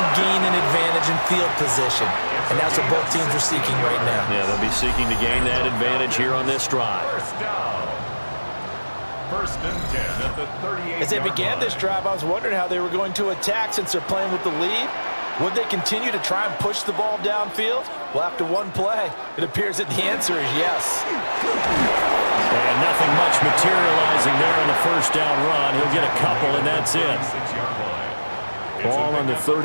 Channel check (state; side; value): inverted; both; correlation -1.00